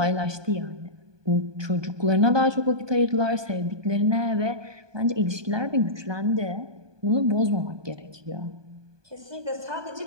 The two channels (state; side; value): late; left; 1.2 ms